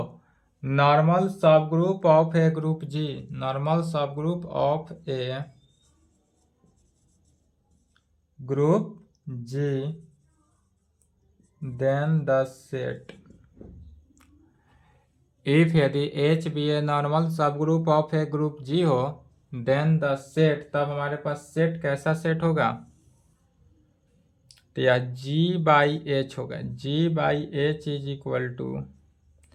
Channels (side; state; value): both; identical; correlation 1.00